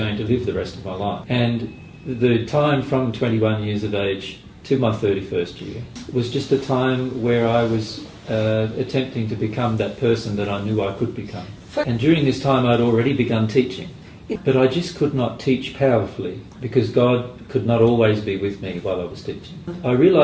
to live the rest of my life. And the time from 21 years of age to my 31st year was just a time where I was attempting to become that person that I knew I could become. And during this time I'd already begun teaching, but I just could not teach powerfully because God could not always be with me while I was teaching. I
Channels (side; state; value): both; identical; correlation 1.00